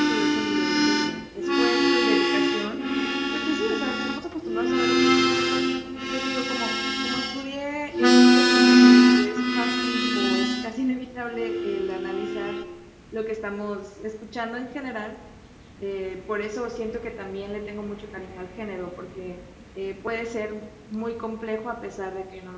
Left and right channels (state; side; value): identical; both; correlation 1.00